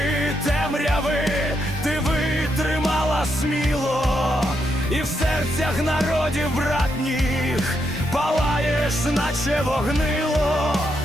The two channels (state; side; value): normal; both; correlation 0.80